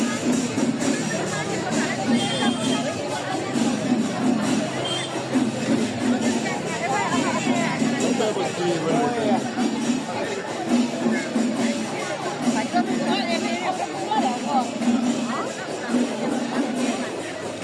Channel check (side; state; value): both; identical; correlation 1.00